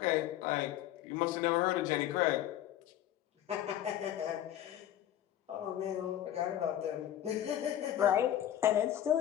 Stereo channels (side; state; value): right; quieter; 11.9 dB